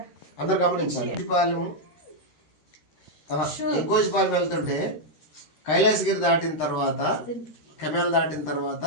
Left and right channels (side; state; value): right; late; 13 ms